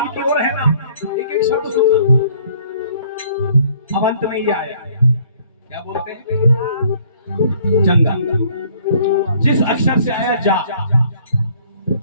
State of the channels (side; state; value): both; inverted; correlation -0.59